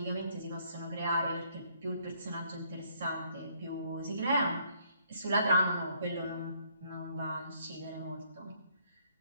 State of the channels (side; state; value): both; inverted; correlation -0.66